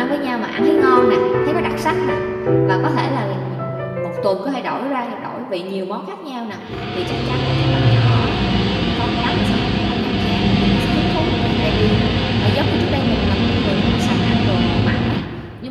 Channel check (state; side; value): identical; both; correlation 1.00